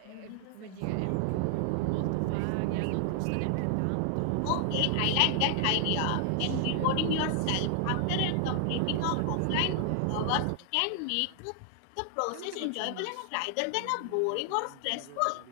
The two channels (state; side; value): different; both; correlation 0.00